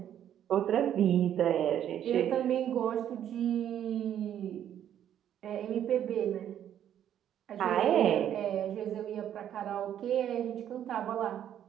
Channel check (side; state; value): left; quieter; 10.3 dB